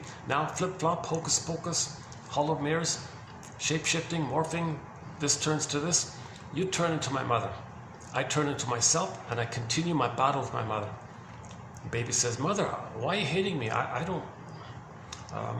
Now, flip flop, hocus pocus, hollow mirrors, shape shifting, morphing. This turns to this. You turn into my mother. I turn into myself, and I continue my battle with my mother. The baby says, Mother, why are you hating me? I don't,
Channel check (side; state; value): both; identical; correlation 1.00